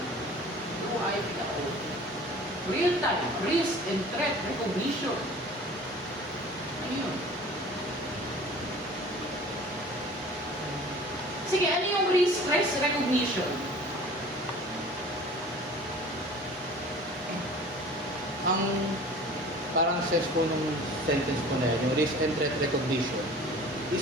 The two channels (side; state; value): both; normal; correlation 0.44